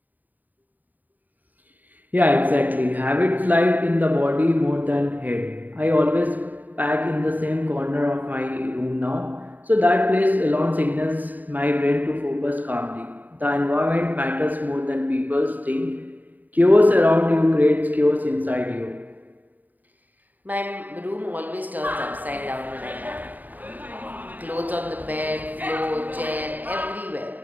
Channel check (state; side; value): late; left; 0.084 ms